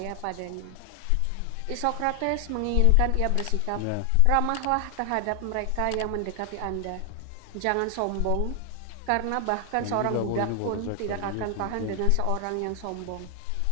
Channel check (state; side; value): different; both; correlation 0.00